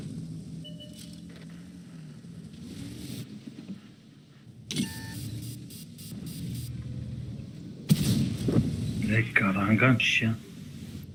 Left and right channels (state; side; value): identical; both; correlation 1.00